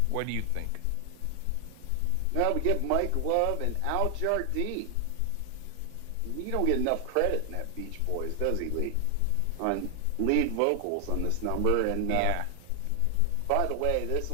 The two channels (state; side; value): different; both; correlation 0.00